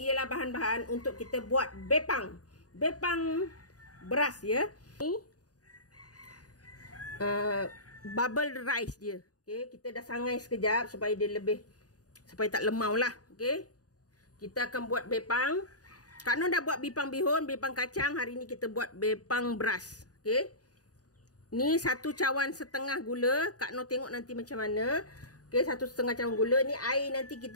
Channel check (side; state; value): right; late; 0.68 ms